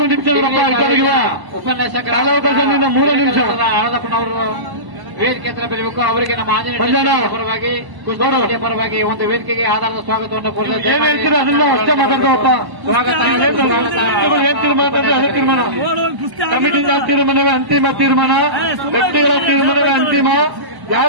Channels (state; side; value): late; left; 1.0 ms